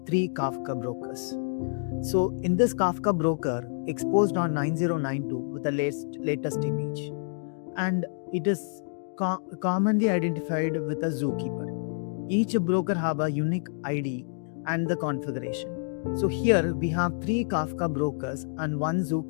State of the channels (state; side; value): silent; right; digital silence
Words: 3 Kafka brokers. So in this Kafka broker, exposed on 9092 with the latest image, and it is commonly identified with a zookeeper. Each broker have a unique ID and the configuration. So here we have 3 Kafka brokers and 1